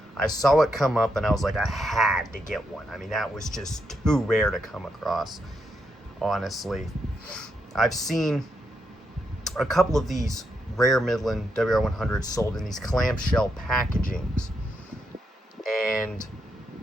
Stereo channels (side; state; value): both; normal; correlation 0.81